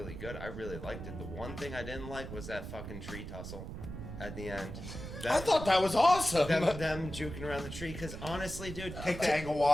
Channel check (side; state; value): right; noise; rumble, 9 dB below the sound